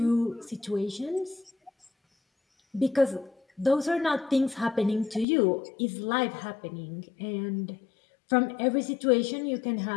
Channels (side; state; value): right; drops out; at 5.2 s